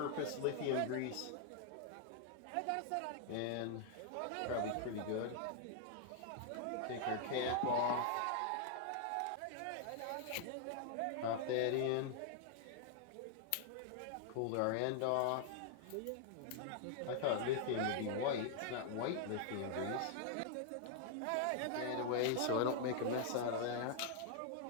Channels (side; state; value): both; different; correlation -0.01